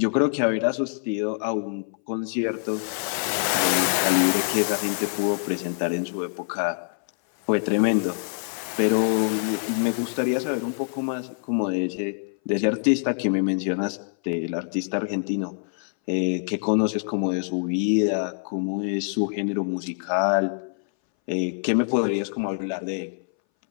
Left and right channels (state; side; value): silent; right; 60 dB below the other